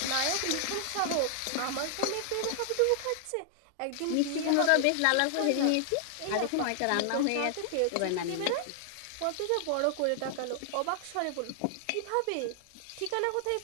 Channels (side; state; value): both; different; correlation 0.00